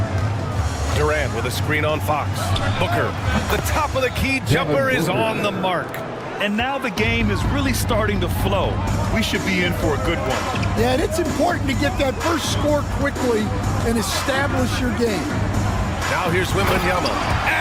Durant with a screen on Fox. Booker, the top of the key jumper is on the mark. And now the game is really starting to flow. We should be in for a good one. Yeah, and it's important to get that first score quickly and establish your game. Now here's Wembanyama.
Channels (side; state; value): both; identical; correlation 1.00